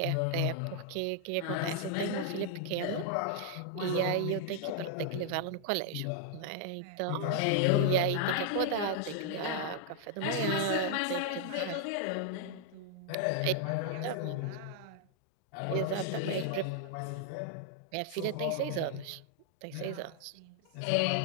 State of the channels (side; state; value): both; different; correlation 0.00